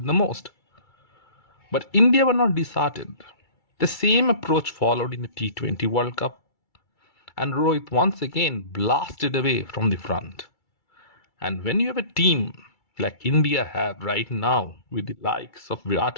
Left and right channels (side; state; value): right; late; 2.3 ms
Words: the most. But India were not disheartened. The same approach followed in the T20 World Cup, and Rohit once again blasted away from the front. And when you have a team like India have right now, with the likes of